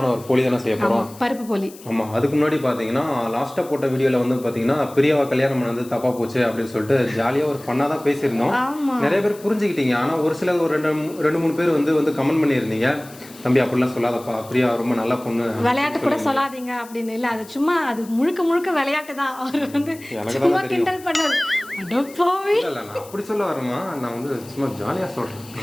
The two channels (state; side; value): noise; left; hiss, 20 dB below the sound